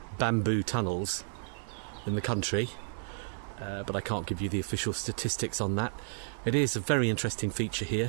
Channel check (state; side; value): silent; left; digital silence